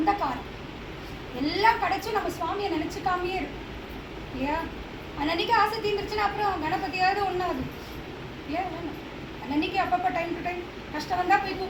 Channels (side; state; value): both; identical; correlation 1.00